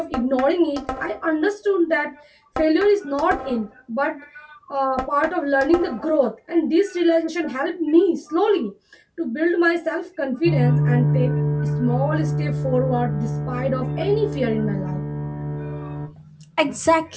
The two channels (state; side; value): identical; both; correlation 1.00